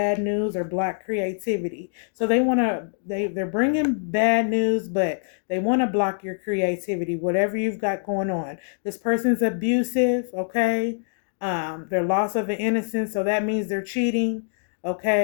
news or block creativity. So they're bringing bad news, but they want to block your creativity, whatever you've got going on. This person's abusive, okay? Their loss of an innocence, so that means they're cheating,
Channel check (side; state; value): right; silent; digital silence